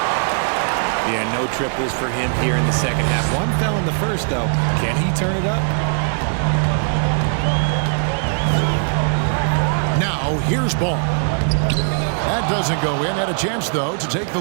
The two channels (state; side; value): silent; left; digital silence